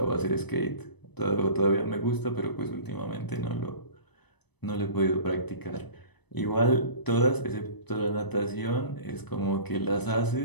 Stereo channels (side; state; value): right; late; 0.99 ms